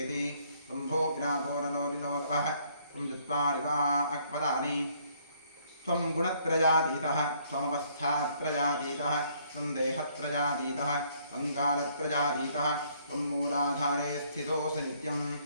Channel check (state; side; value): inverted; both; correlation -0.65